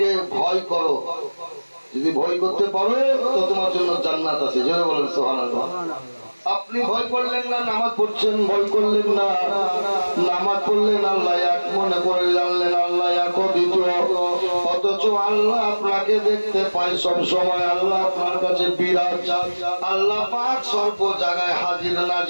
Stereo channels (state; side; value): inverted; both; correlation -1.00